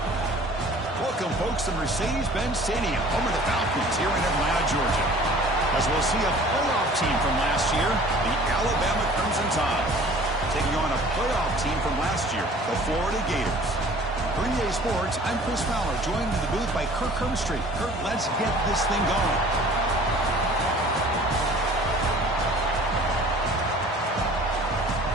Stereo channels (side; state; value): both; normal; correlation 0.49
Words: Welcome, folks, to Mercedes-Benz Stadium, home of the Falcons here in Atlanta, Georgia. As we'll see a playoff team from last year, the Alabama Crimson Tide, taking on a playoff team from last year, the Florida Gators. For EA Sports, I'm Chris Fowler, joined in the booth by Kirk Herbstreit. Kirk, let's get this thing going.